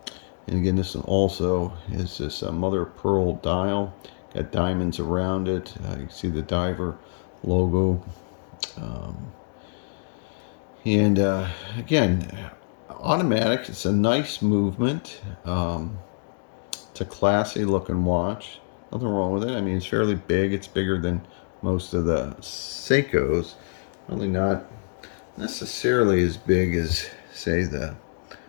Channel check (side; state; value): right; silent; digital silence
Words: and again, this one also is this mother of pearl dial. Got diamonds around it. You can see the diver logo. Um, and again, automatic. It's a nice movement. It's a classy looking watch. Nothing wrong with it. I mean, it's fairly big. It's bigger than most of the Seikos. Only not necessarily as big as, say, the